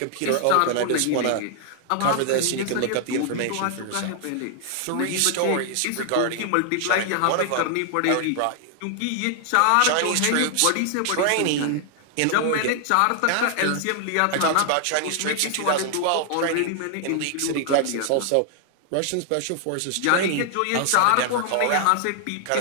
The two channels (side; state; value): both; different; correlation 0.00